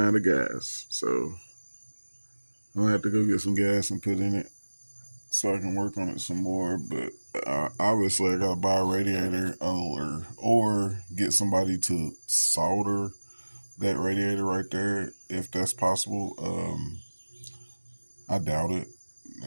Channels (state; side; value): inverted; both; correlation -1.00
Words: out of gas. So I'm gonna have to go get some gas and put in it so I can work on it some more. But obviously I gotta buy a radiator or get somebody to solder that radiator right there if that's possible. I doubt it,